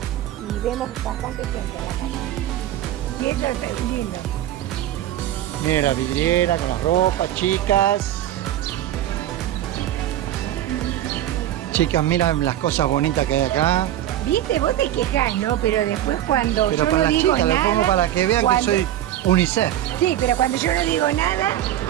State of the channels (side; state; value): left; quieter; 12.6 dB